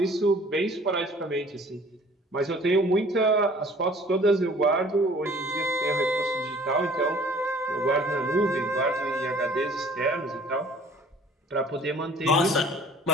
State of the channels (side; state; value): both; normal; correlation 0.52